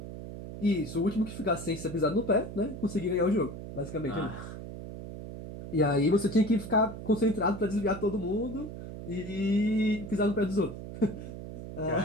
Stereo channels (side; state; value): right; noise; hum, 10 dB below the sound